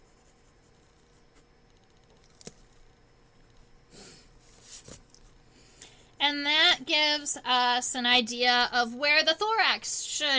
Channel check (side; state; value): both; identical; correlation 1.00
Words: And that gives us an idea of where the thorax